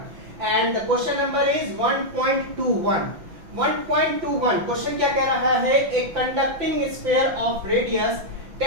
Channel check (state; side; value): late; left; 5.9 ms